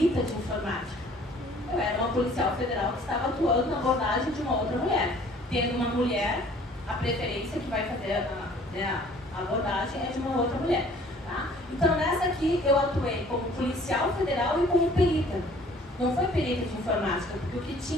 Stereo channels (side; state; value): both; normal; correlation 0.54